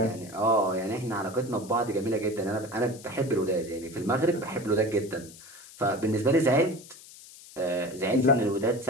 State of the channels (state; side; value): noise; left; hiss, 19 dB below the sound